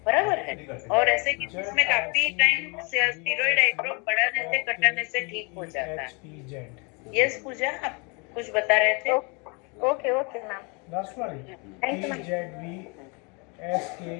बराबर है। और ऐसे केसेस में काफी टाइम स्टेरॉइड आई ड्रॉप बढ़ाने से घटाने से ठीक हो जाता है। यस पूजा, आप कुछ बता रहे थे? ओके ओके मैम, लास्ट वाली thank you ma'am.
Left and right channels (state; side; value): quieter; right; 31.6 dB